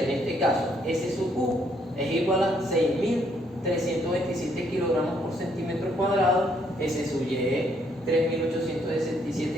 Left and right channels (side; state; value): both; normal; correlation 0.70